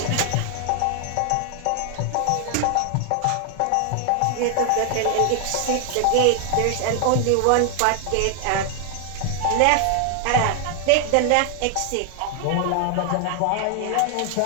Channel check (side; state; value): both; different; correlation 0.00